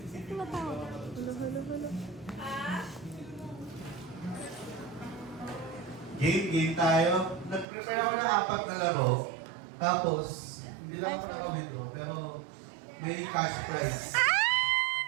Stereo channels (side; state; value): left; drops out; at 7.7 s